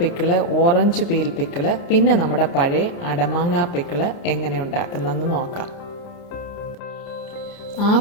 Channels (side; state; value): right; late; 29 ms